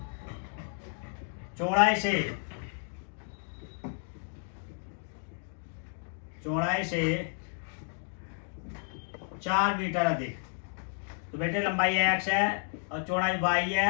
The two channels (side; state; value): right; silent; 57 dB below the other